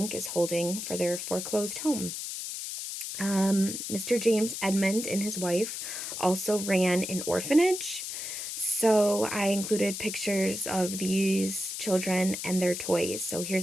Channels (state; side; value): noise; left; hiss, 6 dB below the sound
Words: is holding for their foreclosed home. Mr. James Edmond and his wife also ran an orphanage. So I included pictures of these children and their toys. So